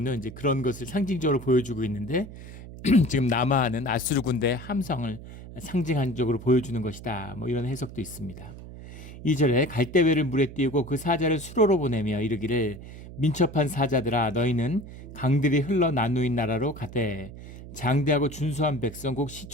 이제 그런 것을 상징적으로 보여주고 있는데 지금 남하하는 아수르 군대의 함성을 상징적으로 보여주는 것이다. 뭐 이런 해석도 있습니다. 2절에 갈대회를 물에 띄우고 그 사자를 수로로 보내며 이르기를 민첩한 사자들아 너희는 강들이 흘러 나누인 나라로 가되 장대하고 준수한 백성 곧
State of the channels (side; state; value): right; noise; hum, 14 dB below the sound